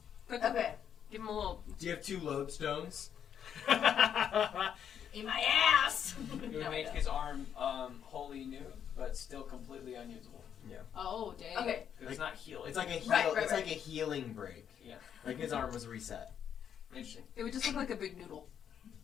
Quick, Okay. give him a little. Do you have 2 lodestones? In my ass. It would No, I make don't. his arm wholly new, but still completely unusable. Oh, dang. Okay. 'Cause it's not healing. It's like a Right, heal. right, It's right. like a healing break. Yeah. Like his arm was reset. Interesting. It would just look like a big noodle.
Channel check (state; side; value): quieter; right; 8.6 dB